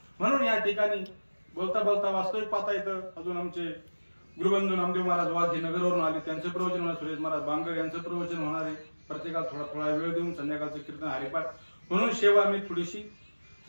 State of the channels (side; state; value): both; inverted; correlation -1.00